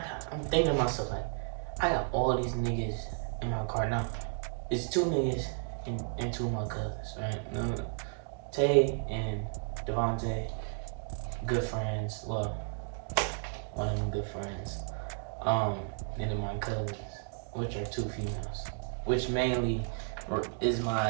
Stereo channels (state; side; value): silent; left; digital silence